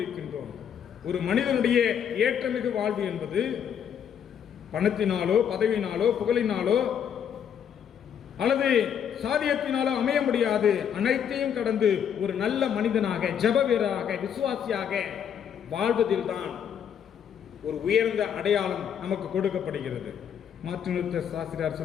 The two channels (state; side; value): quieter; right; 8.4 dB